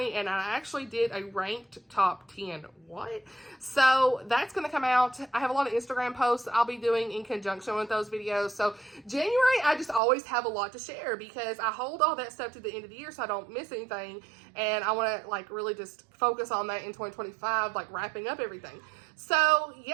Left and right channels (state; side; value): drops out; left; at 10.0 s